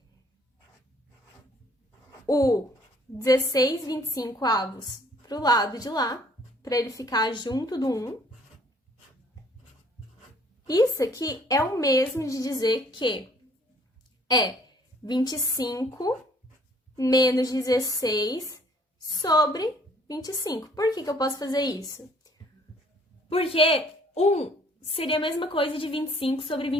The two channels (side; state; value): both; normal; correlation 0.59